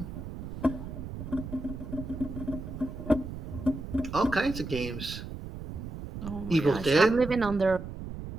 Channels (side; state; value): right; noise; rumble, 9 dB below the sound